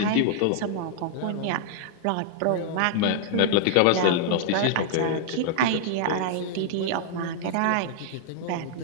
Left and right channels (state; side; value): different; both; correlation -0.01